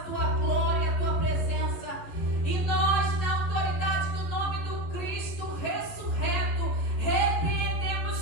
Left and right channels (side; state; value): right; late; 11 ms